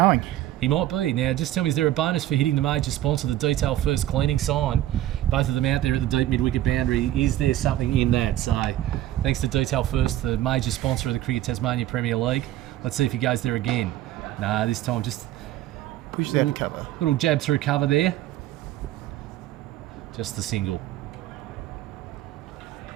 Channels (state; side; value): quieter; left; 13.7 dB